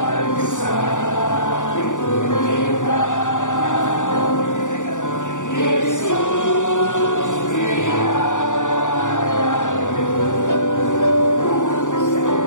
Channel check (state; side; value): late; right; 0.86 ms